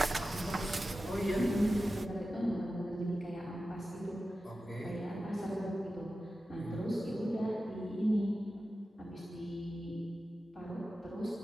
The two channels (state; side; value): normal; both; correlation 0.93